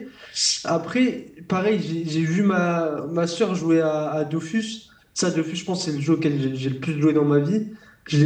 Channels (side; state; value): both; identical; correlation 1.00